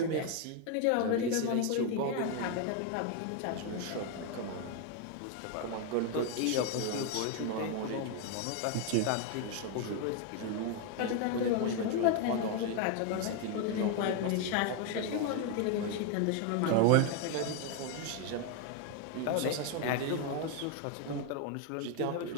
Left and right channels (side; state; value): both; different; correlation 0.01